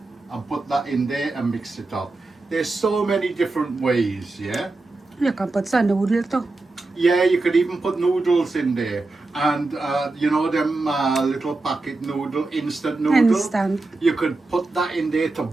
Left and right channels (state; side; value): quieter; left; 3.3 dB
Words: and put that in there and mix it up. There's so many different ways, yeah? You can put some noodle too. Yeah, you could even put noodles in there. And you know them little packet noodle, instant noodle? Instant. You could put that in there to